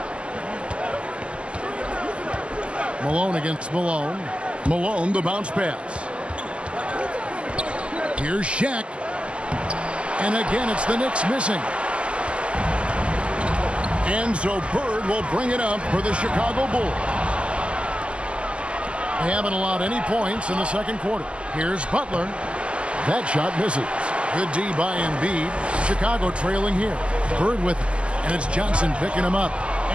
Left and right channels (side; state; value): left; late; 0.054 ms